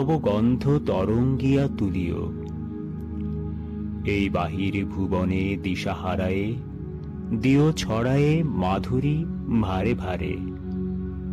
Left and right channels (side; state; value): both; identical; correlation 1.00